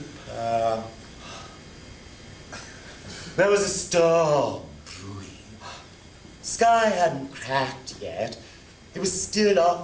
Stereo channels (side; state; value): both; identical; correlation 1.00